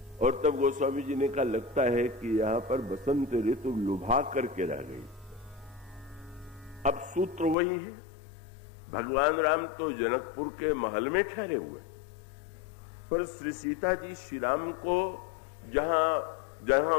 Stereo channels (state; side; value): drops out; right; at 7.6 s